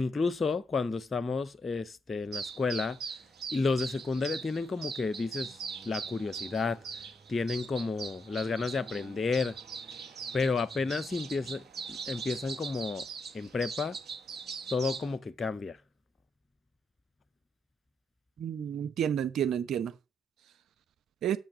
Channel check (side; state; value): both; normal; correlation 0.78